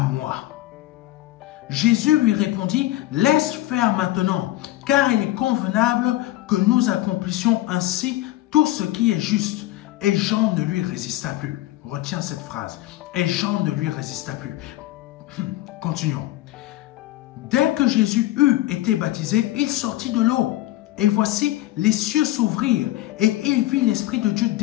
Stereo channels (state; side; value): quieter; right; 16.1 dB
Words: moi. Jésus lui répondit, laisse faire maintenant, car il est convenable que nous accomplissions ainsi tout ce qui est juste. Et Jean ne lui résista plus. Retiens cette phrase. Et Jean ne lui résista plus. Continuons. Dès que Jésus eut été baptisé, il sortit de l'eau. Et voici, les cieux s'ouvrirent, et il vit l'Esprit de Dieu